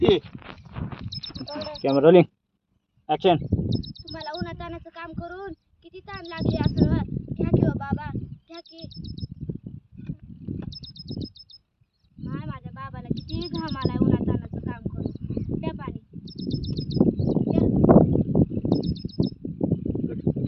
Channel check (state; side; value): identical; both; correlation 1.00